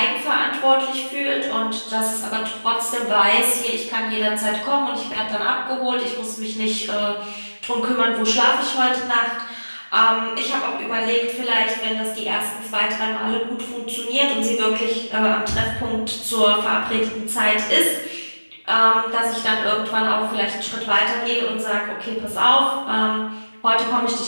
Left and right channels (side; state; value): both; inverted; correlation -1.00